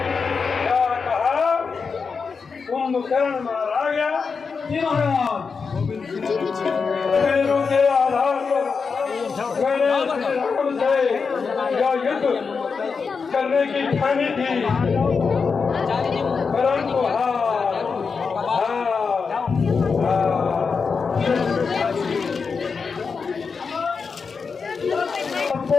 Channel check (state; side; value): quieter; right; 5.3 dB